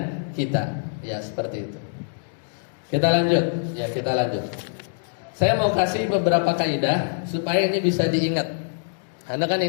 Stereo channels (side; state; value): right; silent; digital silence